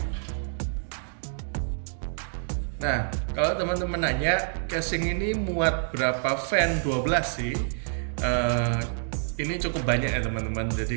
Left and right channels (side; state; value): left; silent; digital silence